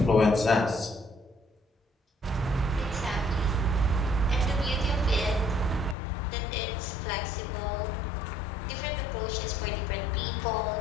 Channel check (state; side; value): drops out; right; at 6.0 s